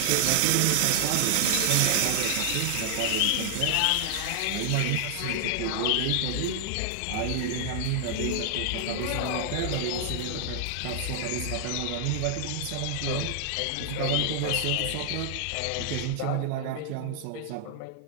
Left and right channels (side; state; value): both; different; correlation 0.00